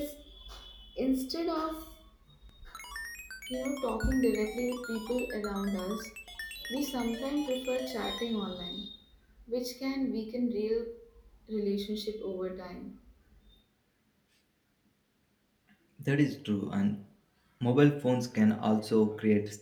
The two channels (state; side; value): identical; both; correlation 1.00